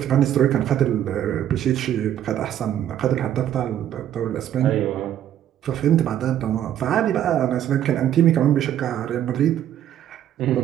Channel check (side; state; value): left; quieter; 11.0 dB